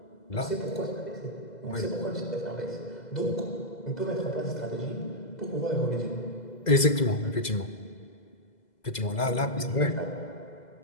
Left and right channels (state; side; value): late; right; 2.0 ms